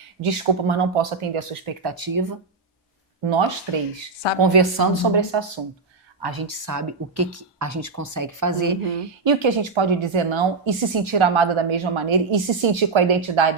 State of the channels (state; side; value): quieter; left; 4.2 dB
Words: Desculpa, mas não posso atender a sua expectativa. Nós três, conversando sobre esse assunto, a gente sabe o que a gente consegue fazer e o que a gente pode dizer não e se sentir amada da mesma maneira e se sentir com a